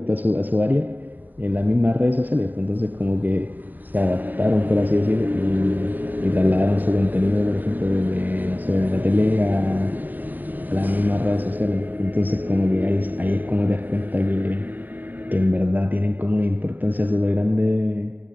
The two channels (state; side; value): late; left; 0.088 ms